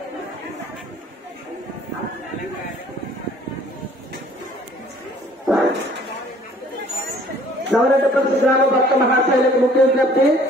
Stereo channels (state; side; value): normal; both; correlation 0.55